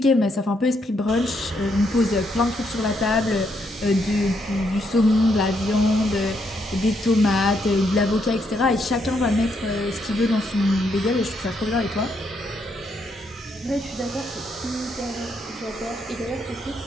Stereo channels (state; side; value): normal; both; correlation 0.76